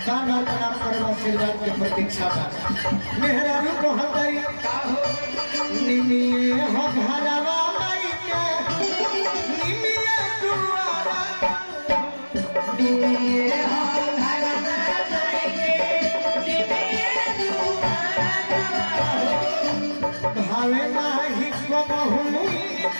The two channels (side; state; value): both; inverted; correlation -1.00